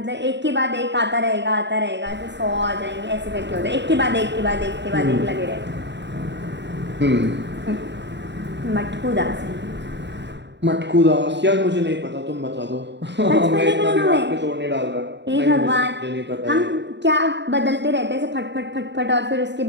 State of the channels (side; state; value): left; late; 0.51 ms